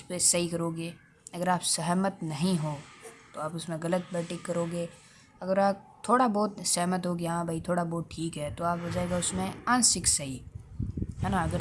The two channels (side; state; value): both; identical; correlation 1.00